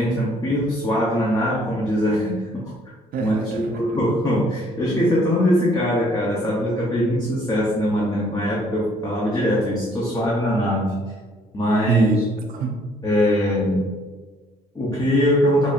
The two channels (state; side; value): normal; both; correlation 0.62